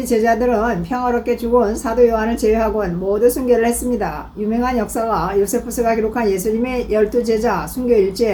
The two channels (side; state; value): both; identical; correlation 1.00